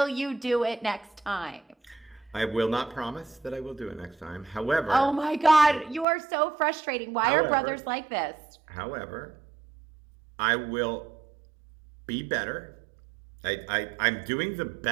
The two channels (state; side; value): drops out; left; at 6.1 s